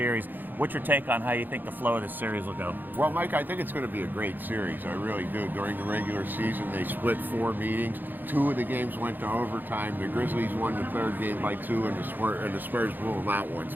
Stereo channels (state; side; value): late; left; 0.089 ms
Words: What's your take on how you think the flow of this series will go? Well, Mike, I think it's going to be a great series. I really do. During the regular season, they split 4 meetings. 2 of the games went to overtime. The Grizzlies won the 3rd game by 2, and the Spurs blew them out